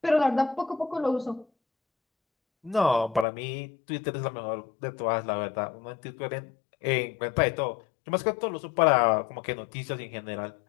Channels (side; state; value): right; drops out; at 3.2 s